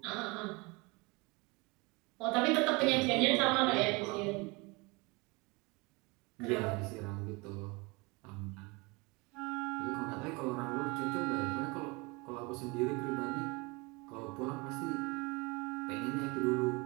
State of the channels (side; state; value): left; quieter; 26.6 dB